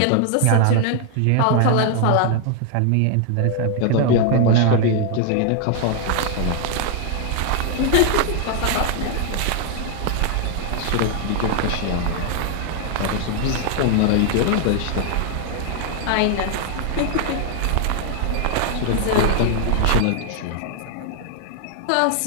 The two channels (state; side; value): different; both; correlation 0.00